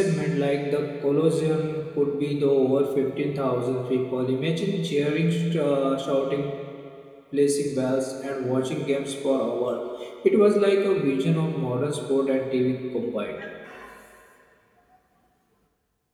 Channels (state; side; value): identical; both; correlation 1.00